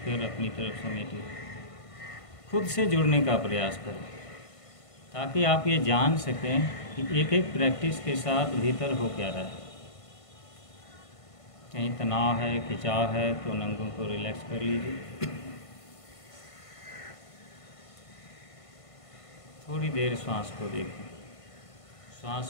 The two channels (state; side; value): late; right; 1.5 ms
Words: अपनी तरफ समेटिए। खुद से जुड़ने का प्रयास करें ताकि आप ये जान सकें कि एक एक प्रैक्टिस के साथ भीतर हो क्या रहा है। कहीं तनाव है, खिंचाव है तो नंगों को रिलैक्स कर लीजिए। थोड़ी देर श्वास को देखें। श्वास